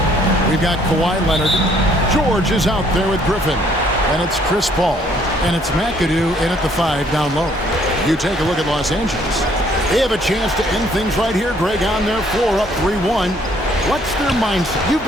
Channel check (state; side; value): normal; both; correlation 0.64